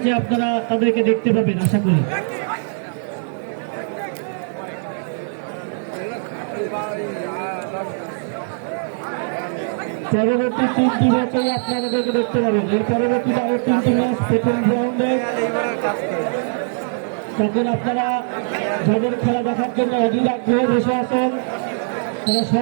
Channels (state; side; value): silent; left; digital silence